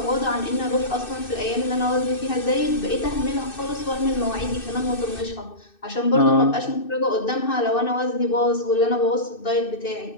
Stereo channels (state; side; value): late; right; 2.6 ms